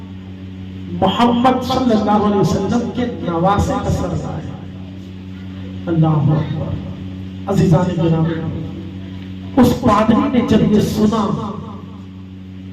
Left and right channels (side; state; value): both; identical; correlation 1.00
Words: मोहम्मद सल्लल्लाहु अलैहि वसल्लम के नवासे का सर लाए। अल्लाह अकबर। अज़ीज़ान गिरामी, उस पादरी ने जब ये सुना